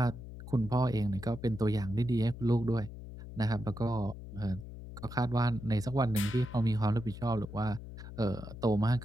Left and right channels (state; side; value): noise; left; hum, 12 dB below the sound